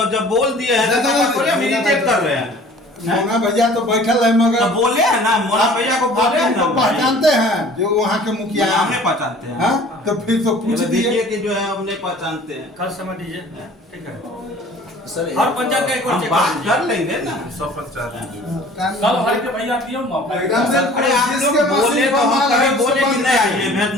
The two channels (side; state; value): both; normal; correlation 0.48